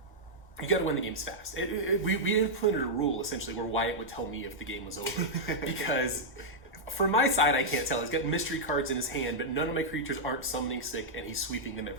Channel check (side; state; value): both; normal; correlation -0.06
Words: you got to win the games fast. We implemented a rule essentially where Wyatt would tell me if the game was over, because from my side I can't tell. He's got mystery cards in his hand, but none of my creatures aren't summoning sick, and he's sweeping them